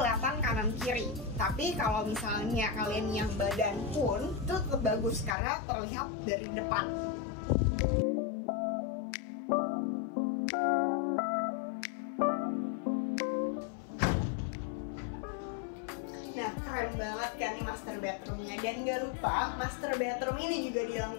kanan kiri. Tapi kalau misalnya kalian yang badan pun itu tetap bagus karena terlihat dari depan. Nah keren banget kan nih master bedroomnya. Dan gak lupa master bedroom ini juga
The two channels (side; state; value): right; drops out; at 5.4 s